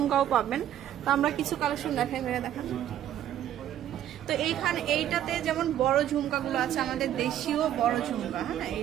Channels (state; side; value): quieter; left; 11.3 dB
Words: পাবেন। তো আমরা কিছু কালেকশন দেখাই, দেখান। তো এইখানে এইটাতে যেমন বড় ঝুমকাগুলো আছে, আমাদের দেশীয় বড় ঝুমকা। হ্যাঁ,